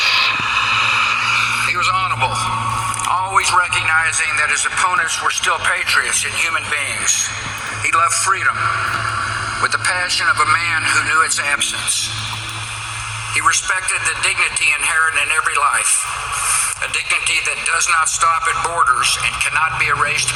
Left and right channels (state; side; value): identical; both; correlation 1.00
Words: He was honorable, always recognizing that his opponents were still patriots and human beings. He loved freedom with the passion of a man who knew its absence. He respected the dignity inherent in every life, a dignity that does not stop at borders and cannot be erased